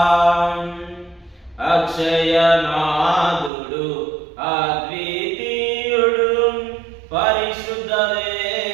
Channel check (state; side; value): drops out; left; at 3.5 s